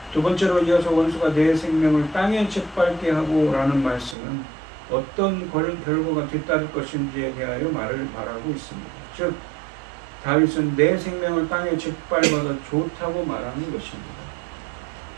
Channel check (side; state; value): left; drops out; at 4.2 s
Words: 두 번째로 이어서 원수가 내 생명을 땅에 짓밟게 하고 라는 말씀은 어떤 결과가 뒤따를 것인지에 대하여 말하고 있습니다. 즉 다윗은 내 생명을 땅에 짓밟아도 좋다고 말하는 것입니다.